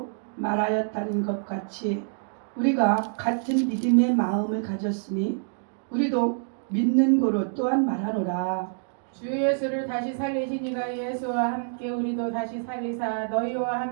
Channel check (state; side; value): silent; left; digital silence